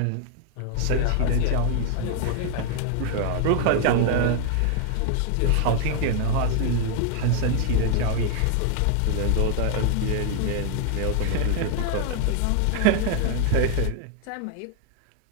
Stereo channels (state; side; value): different; both; correlation 0.00